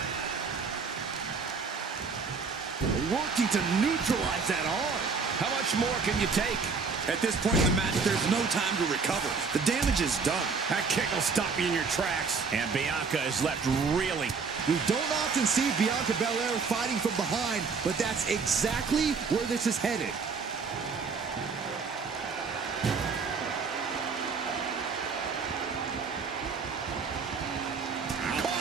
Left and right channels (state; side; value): quieter; left; 5.0 dB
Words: Working to neutralize that arm. How much more can you take? At this point in the match, there's no time to recover. The damage is done. That kick will stop you in your tracks. And Bianca is left reeling. We don't often see Bianca Belair fighting from behind, but that's exactly where this is headed.